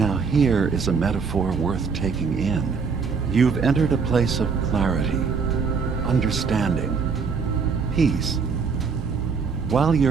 here is a metaphor worth taking in. You've entered a place of clarity, understanding, peace. While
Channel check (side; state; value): left; quieter; 5.4 dB